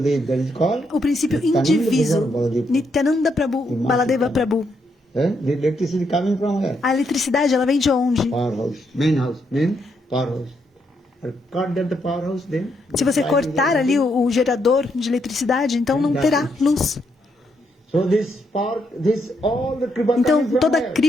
o princípio indiviso, Nityananda Prabhu, Baladeva Prabhu. A eletricidade, ela vem de onde? Se você cortar ali o gerador de eletricidade, então não terá luz. Então toda a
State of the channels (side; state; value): both; normal; correlation 0.77